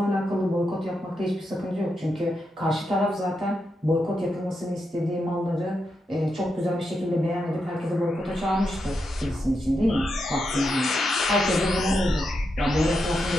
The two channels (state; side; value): normal; both; correlation 0.85